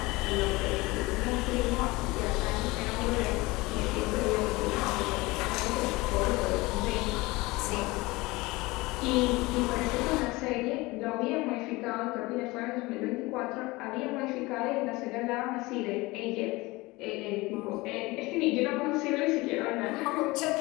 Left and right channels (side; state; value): right; quieter; 22.1 dB